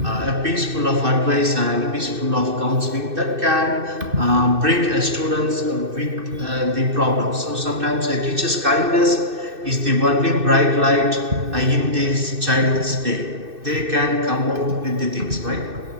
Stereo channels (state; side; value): late; left; 2.6 ms